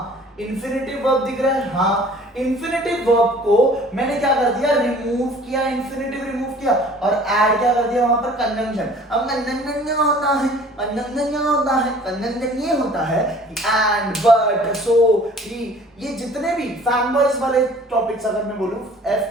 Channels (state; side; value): normal; both; correlation 0.50